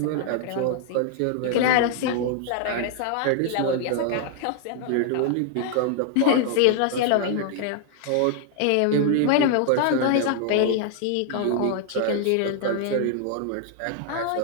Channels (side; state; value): both; different; correlation 0.00